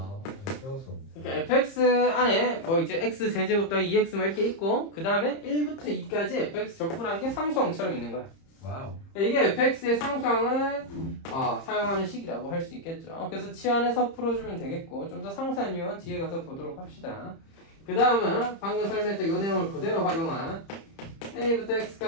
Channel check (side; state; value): right; late; 30 ms